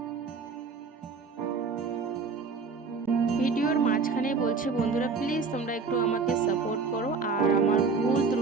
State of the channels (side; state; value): left; quieter; 4.7 dB